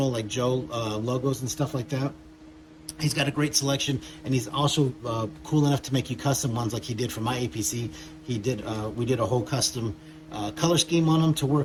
like Joe logos and stuff like that. He's got a great selection, and he's also cool enough to make you custom ones like he did for my APC. We did a whole custom color scheme on them to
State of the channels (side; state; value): both; identical; correlation 1.00